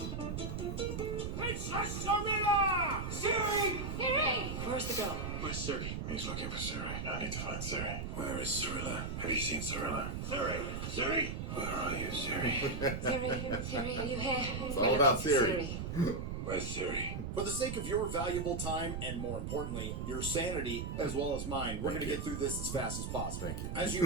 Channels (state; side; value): noise; right; rumble, 4 dB below the sound